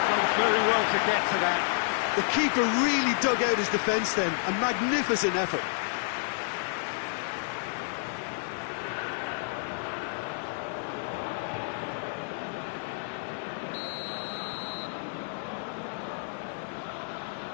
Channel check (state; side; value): silent; right; digital silence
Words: done very well to get to that. The keeper really dug out his defence then. A magnificent effort.